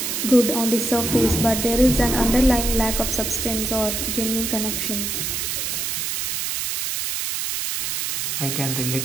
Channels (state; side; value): noise; right; hiss, 1 dB below the sound